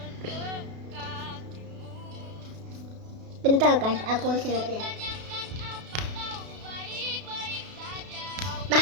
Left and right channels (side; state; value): left; late; 32 ms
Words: Bentar guys, aku siap ya. Tanyakan apa kau baik-baik saja.